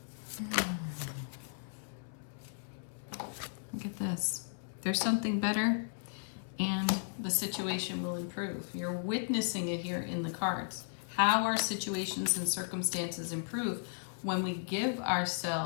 Look at this. There's something better and the situation will improve. You're witnessing it here in the cards. How our situations and circumstances improve when we give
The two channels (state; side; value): silent; right; 54 dB below the other